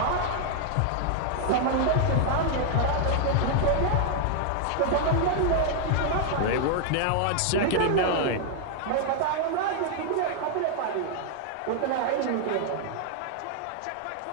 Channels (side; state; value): both; different; correlation 0.00